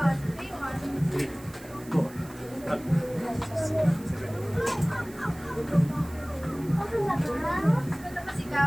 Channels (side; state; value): right; noise; hiss, 21 dB below the sound